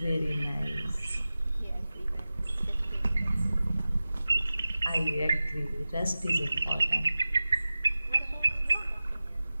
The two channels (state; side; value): inverted; both; correlation -0.96